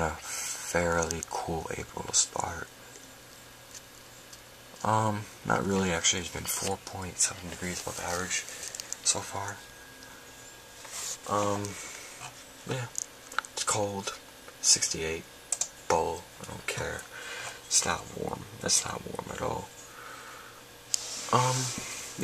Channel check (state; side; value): identical; both; correlation 1.00